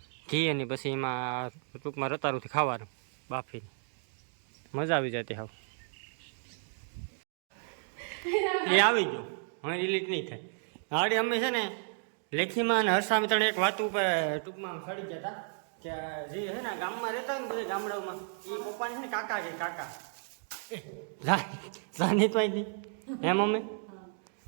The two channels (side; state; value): left; silent; 56 dB below the other